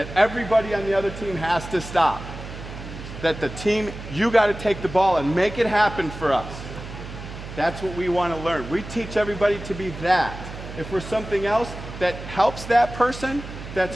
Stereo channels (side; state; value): right; noise; hum, 11 dB below the sound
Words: everybody on the other team has to stop. That the team, you got to take the ball and make it happen for us. That's what we want to learn. We teach everybody to be that. If we're something else that helps that person,